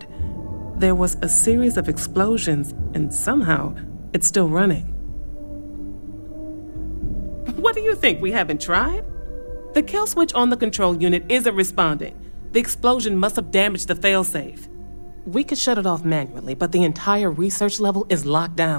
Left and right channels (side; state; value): both; inverted; correlation -1.00